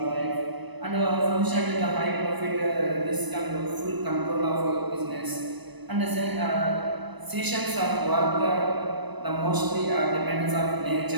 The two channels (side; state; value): left; late; 1.0 ms